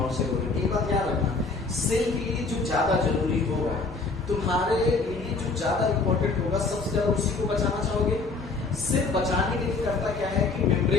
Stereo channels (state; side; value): quieter; right; 4.0 dB